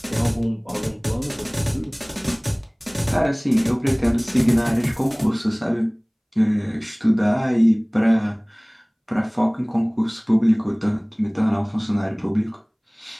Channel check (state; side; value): identical; both; correlation 1.00